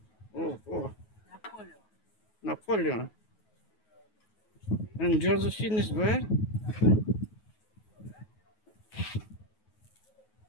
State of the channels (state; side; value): late; right; 9.4 ms